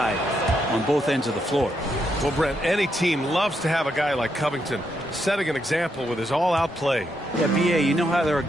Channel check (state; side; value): normal; both; correlation 0.80